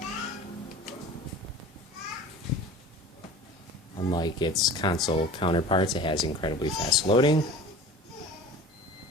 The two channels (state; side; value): normal; both; correlation 0.40